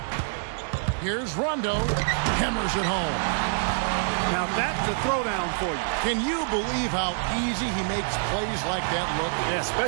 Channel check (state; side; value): silent; left; 61 dB below the other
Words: Here's Rondo. Hammers it home. Now that's a throwdown for you. Can you believe how easy he makes plays like that look? Yeah,